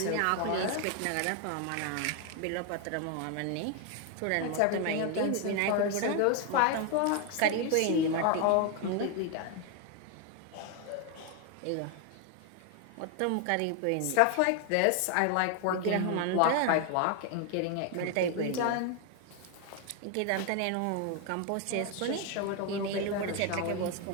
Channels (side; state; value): both; different; correlation 0.01